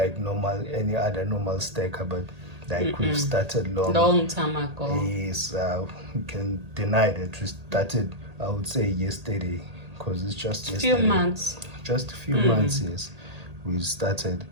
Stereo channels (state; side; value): late; left; 1.8 ms